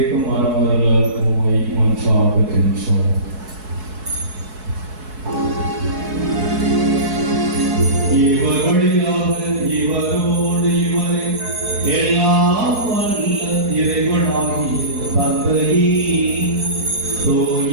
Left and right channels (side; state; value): left; late; 4.7 ms